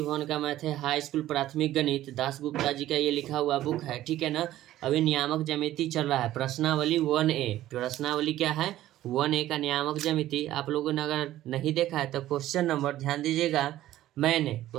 भवन का मैथ है, हाई स्कूल प्राथमिक गणित, दास गुप्ता जी का ये लिखा हुआ बुक है, ठीक है ना। अभी नियामक ज्यामिति चल रहा है, प्रश्नावली 1A। प्रश्नावली क्या है? 1A का नियामक ज्यामिति। आप लोगों ने अगर नहीं देखा है तो क्वेश्चन नंबर ध्यान दीजिएगा। मैंने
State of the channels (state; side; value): quieter; left; 14.1 dB